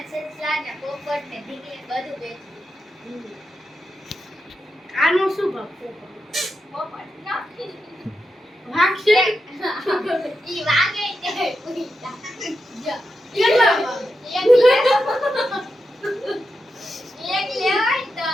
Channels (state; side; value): normal; both; correlation 0.88